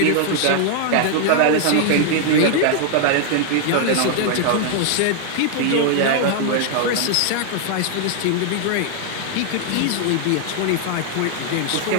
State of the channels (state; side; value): different; both; correlation 0.00